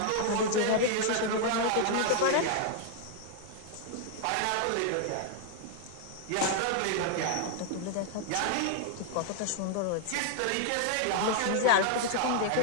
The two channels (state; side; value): different; both; correlation 0.00